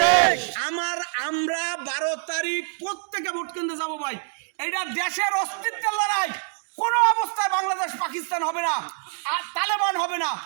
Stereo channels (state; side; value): silent; left; 58 dB below the other